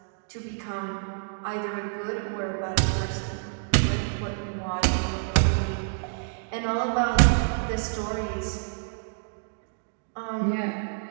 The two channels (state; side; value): silent; left; digital silence